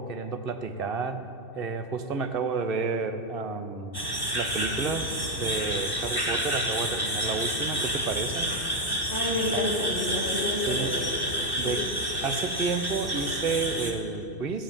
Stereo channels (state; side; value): late; right; 2.6 ms